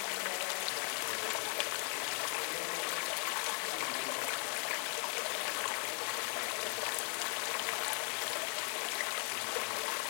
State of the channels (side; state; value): right; quieter; 34.6 dB